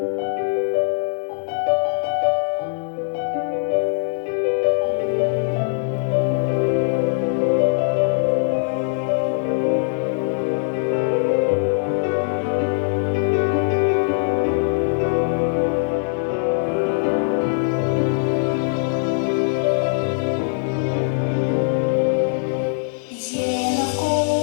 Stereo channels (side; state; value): right; silent; 61 dB below the other